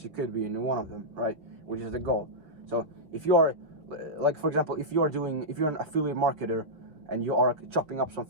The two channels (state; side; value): late; left; 5.4 ms